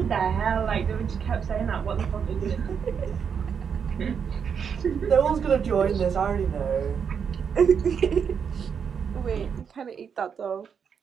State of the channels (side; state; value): left; quieter; 7.0 dB